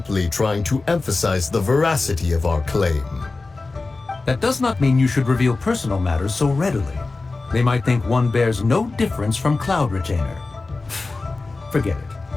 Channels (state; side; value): quieter; right; 3.6 dB